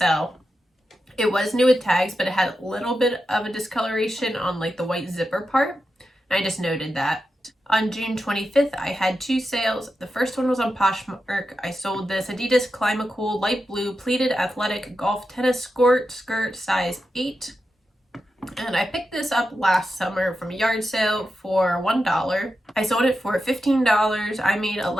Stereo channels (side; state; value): both; normal; correlation 0.89